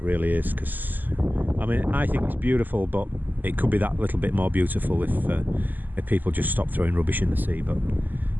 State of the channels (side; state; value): left; late; 0.086 ms